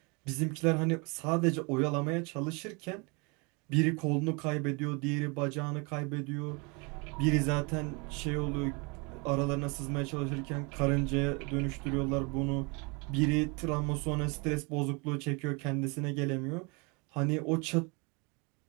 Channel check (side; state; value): left; quieter; 30.2 dB